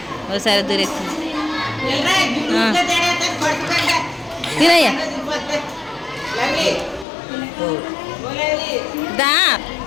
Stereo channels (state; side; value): drops out; right; at 7.1 s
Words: ఒకసారి దూరేస్తుంది తినయ్యా దా